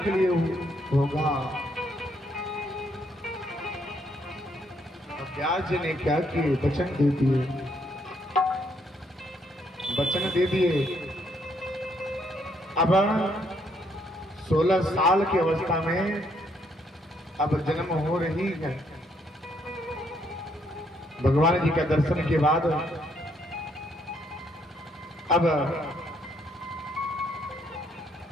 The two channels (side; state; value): both; normal; correlation 0.72